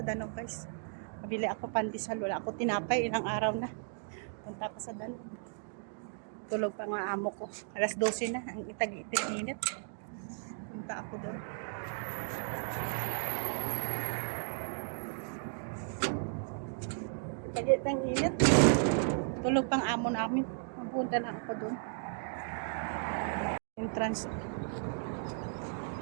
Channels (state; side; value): silent; left; digital silence